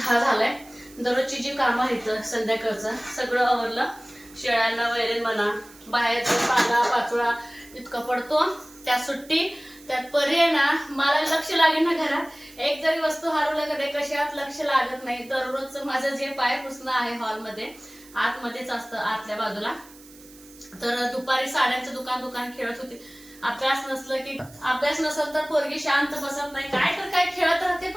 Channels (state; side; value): noise; right; hiss, 22 dB below the sound